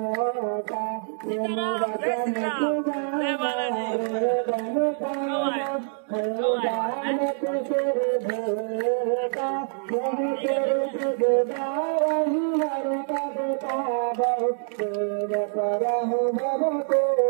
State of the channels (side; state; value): left; silent; digital silence